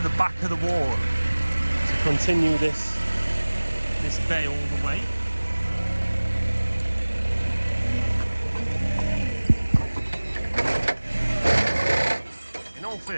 back of the wall to continue this bay all the way. all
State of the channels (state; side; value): inverted; both; correlation -1.00